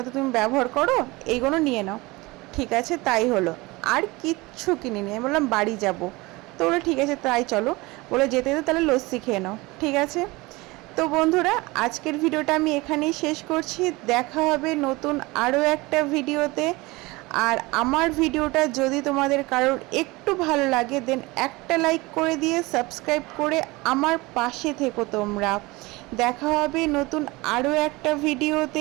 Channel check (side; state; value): left; quieter; 22.6 dB